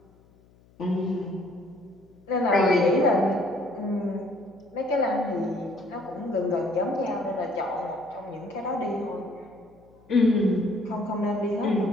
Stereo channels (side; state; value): left; noise; hum, 29 dB below the sound